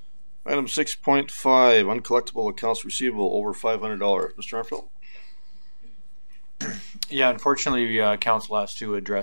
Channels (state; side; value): inverted; both; correlation -1.00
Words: Item 6.5, uncollectible accounts receivable over $500. Mr. Armfield? Yeah, unfortunately, council has to